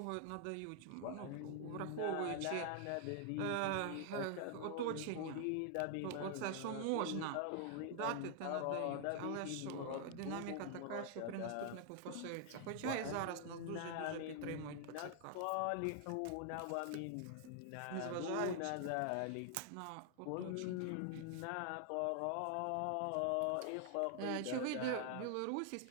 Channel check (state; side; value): different; both; correlation 0.00